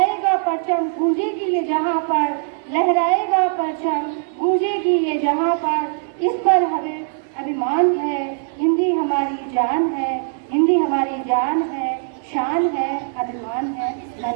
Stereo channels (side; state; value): left; silent; 63 dB below the other